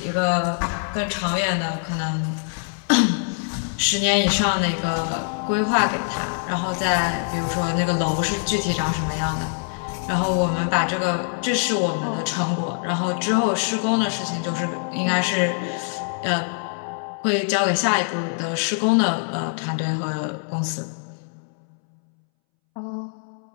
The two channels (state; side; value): silent; right; 63 dB below the other